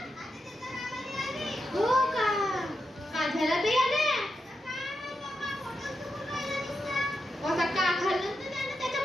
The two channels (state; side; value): normal; both; correlation 0.87